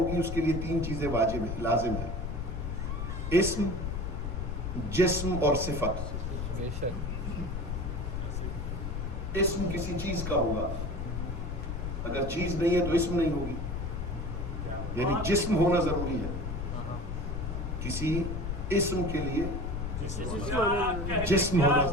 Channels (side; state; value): left; noise; rumble, 4 dB below the sound